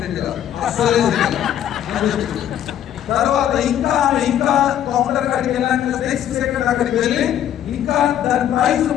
కాదు అసలే. తర్వాత ఇంకా కౌంటర్ కాడికి వెళ్ళాక నెక్స్ట్ సెకండ్ అక్కడికి వెళ్ళి ఇంకా దాని ప్రైస్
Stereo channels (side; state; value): right; quieter; 10.7 dB